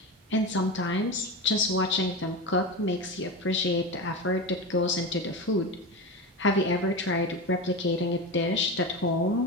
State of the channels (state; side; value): normal; both; correlation 0.22